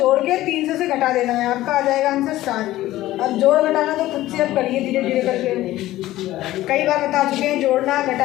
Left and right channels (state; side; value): quieter; right; 15.6 dB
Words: के 300 से घटा देना है। आपका आ जाएगा आंसर 60। अब जोड़ घटाना तो खुद से अब करिए धीरे धीरे करके। कई बार बता चुके हैं, जोड़ना,